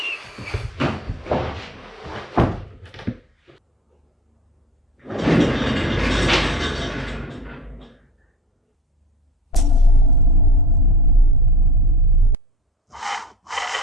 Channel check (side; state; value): both; normal; correlation 0.35